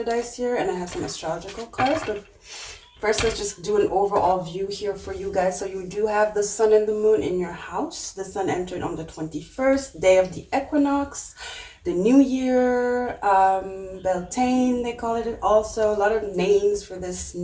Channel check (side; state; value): both; identical; correlation 1.00